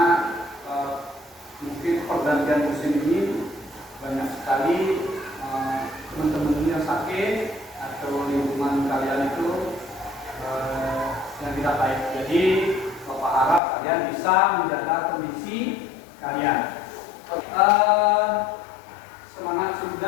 mungkin pergantian musim ini banyak sekali teman-teman yang sakit atau lingkungan kalian itu yang tidak baik. Jadi Bapak harap kalian bisa menjaga kondisi kalian. Semangat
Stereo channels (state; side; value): drops out; right; at 13.6 s